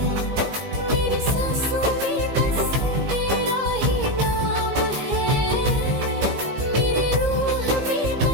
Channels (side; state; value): left; late; 17 ms